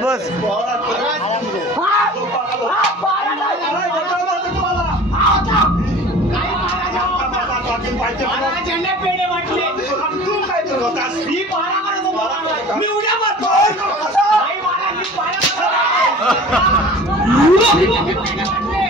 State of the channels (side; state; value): both; normal; correlation 0.42